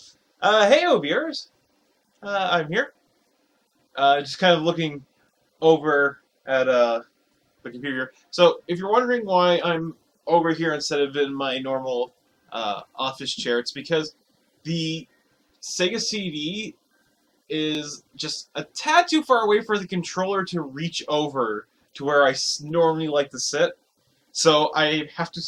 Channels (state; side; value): identical; both; correlation 1.00